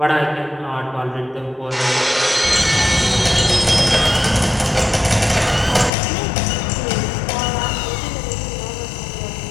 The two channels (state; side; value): drops out; right; at 5.9 s